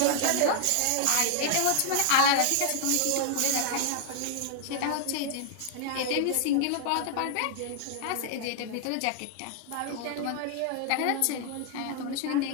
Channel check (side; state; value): both; different; correlation 0.00